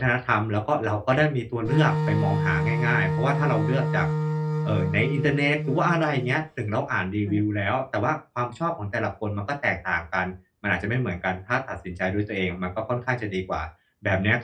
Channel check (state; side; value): identical; both; correlation 1.00